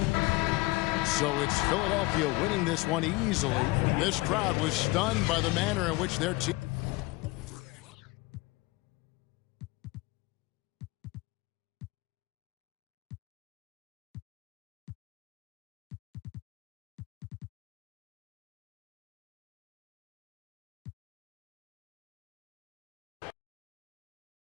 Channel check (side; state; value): right; quieter; 22.2 dB